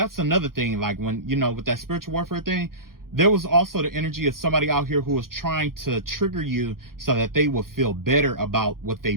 another thing, like when, you know, with that spiritual warfare thing, there was also the energy of somebody out here who was trying to trigger you so that they will feel better about what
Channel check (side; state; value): left; late; 0.92 ms